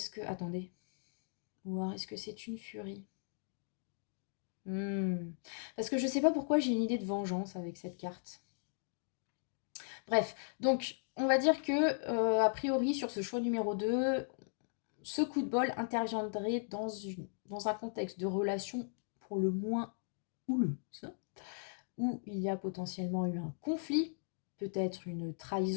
que... Attendez. Ou est-ce que c'est une furie? Parce que je sais pas pourquoi j'ai une idée de vengeance avec cette carte. Bref, donc on va dire que a priori sur ce choix numéro 2, ce coup de bol interviendrait dans un contexte de relation pour le moins houleuse, où il y a potentiellement eu un conflit, peut-être une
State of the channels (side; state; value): right; silent; digital silence